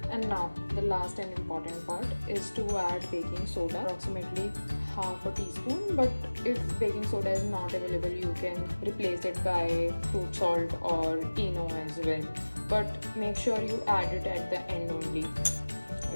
And now the last and important part is to add baking soda, approximately half a teaspoon, but if baking soda is not available, you can replace it by fruit salt or Eno as well, but make sure you add it at the end only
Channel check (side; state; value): both; inverted; correlation -1.00